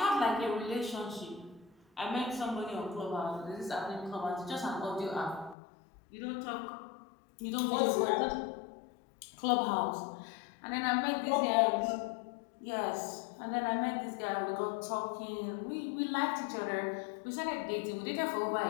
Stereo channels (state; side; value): drops out; right; at 5.6 s